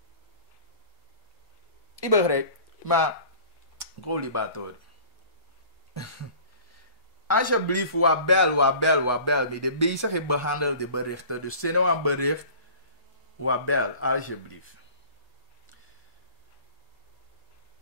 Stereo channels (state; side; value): late; left; 8.2 ms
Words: Ik begrijp, maar Golibator. Alsjeblieft, wat bel me. De bezig behandel de berichten. Dus zet nou een bericht. Wabel, alsjeblieft.